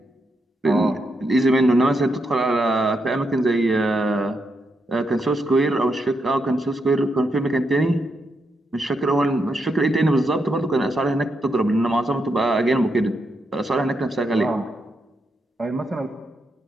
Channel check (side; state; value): both; normal; correlation 0.82